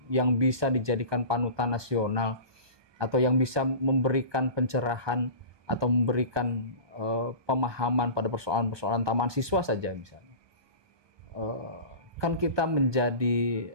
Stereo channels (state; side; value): late; left; 1.2 ms